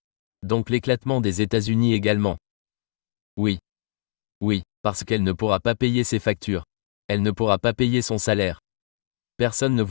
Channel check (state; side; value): silent; right; 62 dB below the other